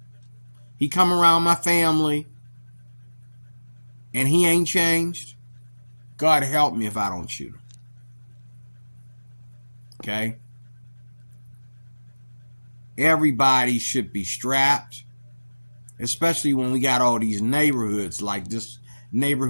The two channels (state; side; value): inverted; both; correlation -1.00